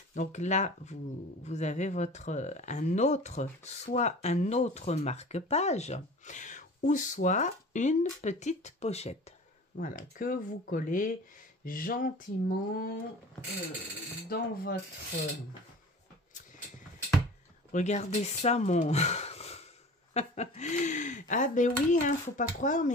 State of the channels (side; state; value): both; normal; correlation 0.40